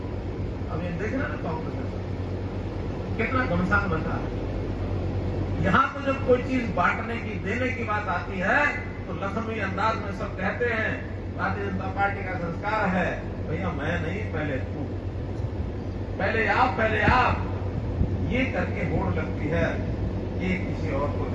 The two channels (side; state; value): both; identical; correlation 1.00